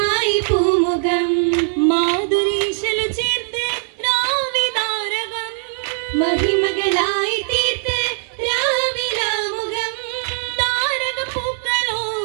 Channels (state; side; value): silent; left; digital silence